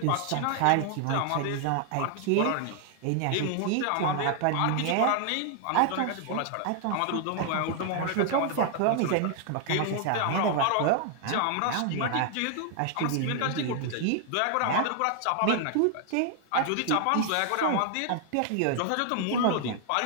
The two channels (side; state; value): both; different; correlation 0.00